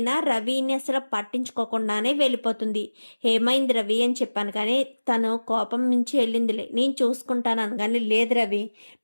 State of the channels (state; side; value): inverted; both; correlation -1.00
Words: రవిని అసలు పట్టించుకోకుండానే వెళ్ళిపోతుంది. ఏమైంది రవి అని చెప్పాను కానీ తను కోపం నుంచి వెళ్ళిందిలే, నేను చూసుకుంటాను అనగానే లేదు రవి